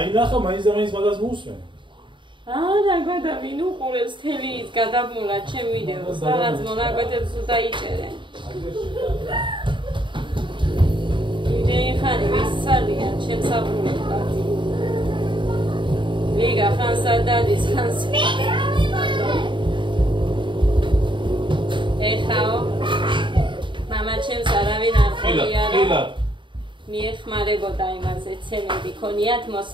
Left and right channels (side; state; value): left; late; 0.23 ms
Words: ნახა მაინც და მაინც მაგას მოусმენ. რა გადა ვინ უყურებს თელი ის გადაბმულა ჩემ ვიდეოს რაღაც მონაკვეთებს დაიჭერენ. იმდენი ხანი ვისწავლიან ჩემს აბურებად. ლიგა ხანსა დადის ხანს. ეხაო მამა ჩემს არავინ არ ყოფილა. მიეხმარებოდა იმაზე ცემენტი ქონიათ